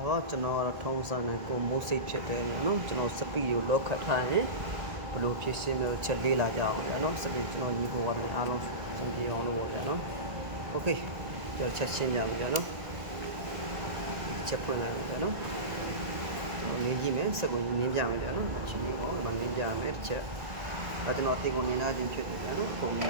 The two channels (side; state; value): left; late; 1.7 ms